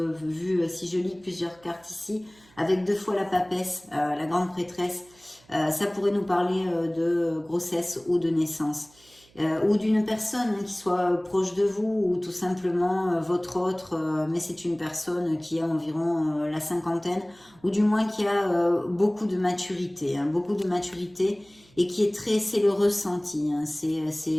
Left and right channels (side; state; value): right; noise; hum, 29 dB below the sound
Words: vu, si je lis plusieurs cartes ici, avec 2 fois la papesse, la grande prêtresse, ça pourrait nous parler de grossesse ou de naissance. Ou d'une personne qui soit proche de vous, ou tout simplement votre autre, mais c'est une personne qui a environ la cinquantaine, ou du moins qui a beaucoup de maturité, et qui est très, c'est le ressenti, c'est